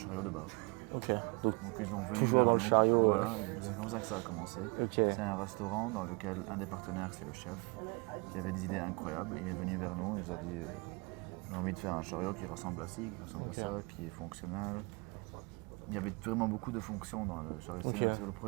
de base. ok. Donc, Donc ils ont venu Toujours vers dans le nous. chariot, Voilà, c'est comme ça que ça a commencé. ok, C'est un restaurant dans lequel un des partenaires, c'est le chef, qui avait des idées incroyables. Il est venu vers nous, il nous a dit j'ai envie de faire un chariot qui ressemble à ci, qui ressemble à ça, qui est fonctionnel. Il y avait vraiment beaucoup de fonctions dans le chariot. Ok. C'est le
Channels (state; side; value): quieter; left; 29.3 dB